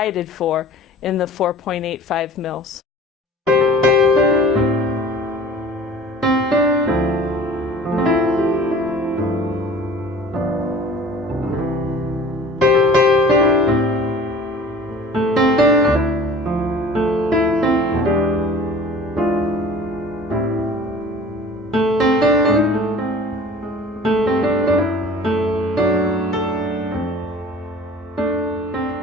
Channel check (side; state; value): both; normal; correlation 0.45